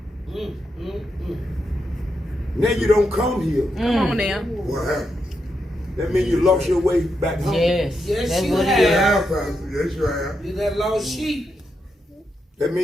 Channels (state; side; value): normal; both; correlation 0.83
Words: now you don't come here. Come on now. What happened? That means you lost your way back home. Yes. Yes, That's you what have. it is. Yeah, Pastor. Yes, you have. You that lost sheep. That